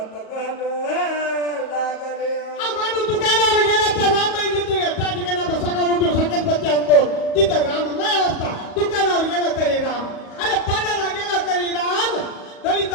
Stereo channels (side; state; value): right; late; 37 ms